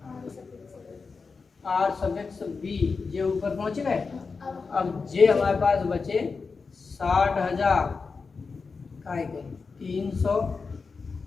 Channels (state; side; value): quieter; right; 4.7 dB